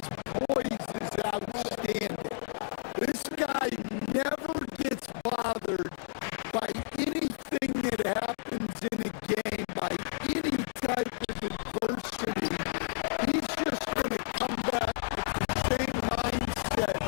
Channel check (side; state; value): right; silent; digital silence